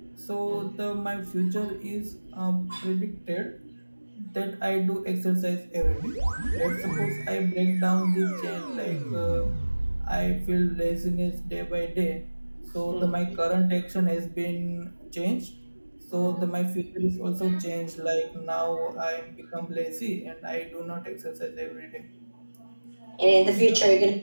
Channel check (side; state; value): both; inverted; correlation -1.00